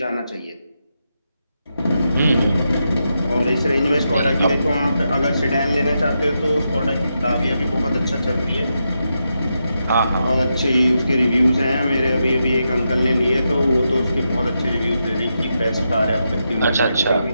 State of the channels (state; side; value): inverted; both; correlation -0.85